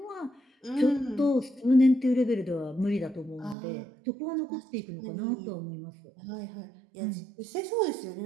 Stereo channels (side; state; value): left; drops out; at 3.6 s